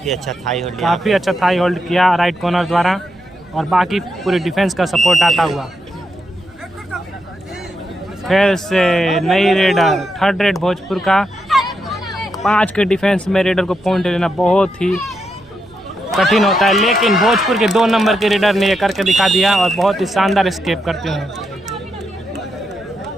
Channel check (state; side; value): noise; right; rumble, 28 dB below the sound